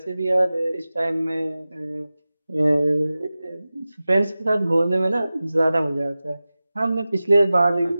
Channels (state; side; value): inverted; both; correlation -0.96